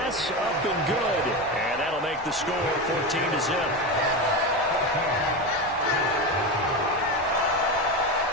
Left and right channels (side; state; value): both; normal; correlation 0.19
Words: up and good. And that'll make the score 14-0.